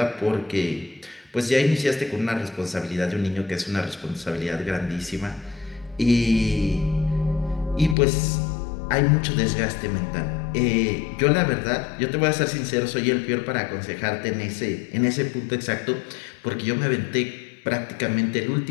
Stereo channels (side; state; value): right; drops out; at 8.0 s